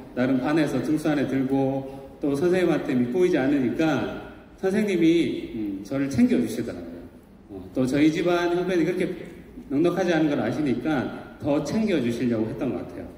나름 반에서 등수 안에 들고 또 선생님한테 밑보이지 않으니까 선생님이 저를 챙겨주시더라고요. 또 저희 집안 형편이 그렇게 넉넉하지 않은 걸 아시니까 더 챙겨주시려고 했던 것 같아요.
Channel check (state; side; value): identical; both; correlation 1.00